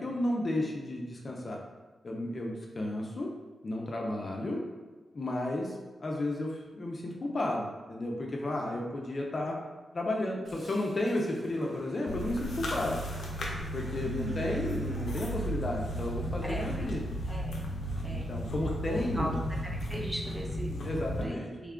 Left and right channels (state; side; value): normal; both; correlation 0.83